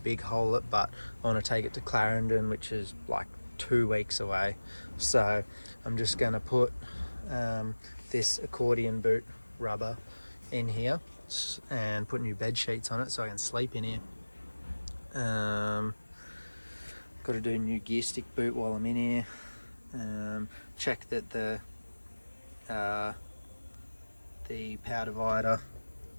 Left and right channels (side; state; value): both; inverted; correlation -1.00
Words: big hole it, but I want to take it to Clarendon, which is like 2 weeks away. So I'm just going to put this accordion boot rubber in here and put new bed sheets on it so I can sleep in here. Got to do a new gear stick boot while I'm in here. Check that the power divider